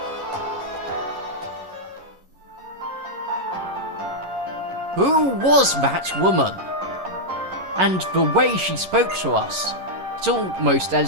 Who was that woman? And the way she spoke to us. It's almost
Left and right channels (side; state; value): left; late; 11 ms